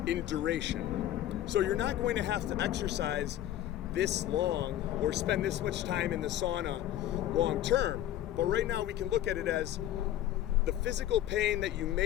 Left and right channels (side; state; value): right; quieter; 12.8 dB